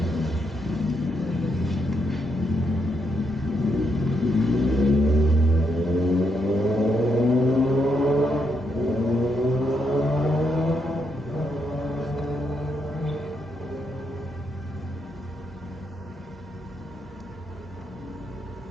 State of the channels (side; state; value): both; normal; correlation 0.79